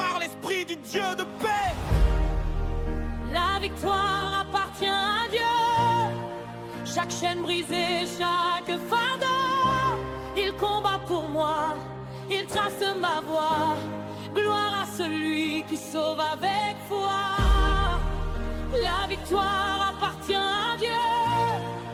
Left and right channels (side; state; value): both; identical; correlation 1.00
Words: l'esprit du Dieu de paix. La victoire appartient à Dieu. Chaque chaîne brisée, chaque fardeau, il combat pour moi, il trace ma voie. Gloire à celui qui sauve avec foi. La victoire appartient à Dieu.